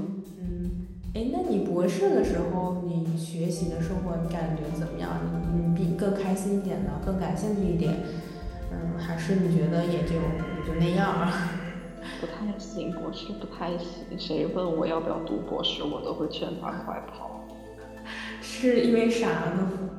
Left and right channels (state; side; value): identical; both; correlation 1.00